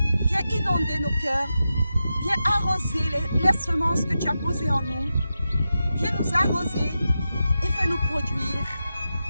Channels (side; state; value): both; inverted; correlation -0.90